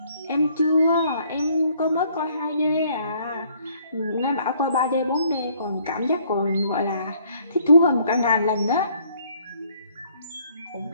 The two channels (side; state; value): both; inverted; correlation -0.63